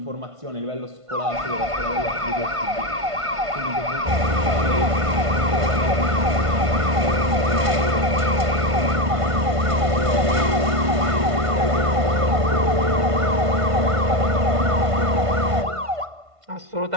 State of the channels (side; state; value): left; late; 1.5 ms